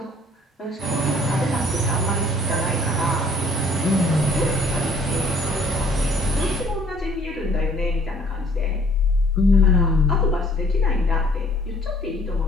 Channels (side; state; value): both; normal; correlation 0.58